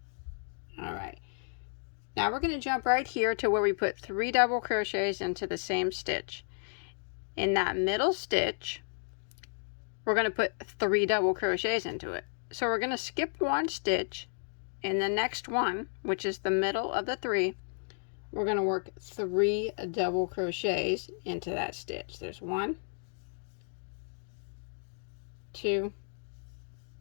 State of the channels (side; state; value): right; silent; digital silence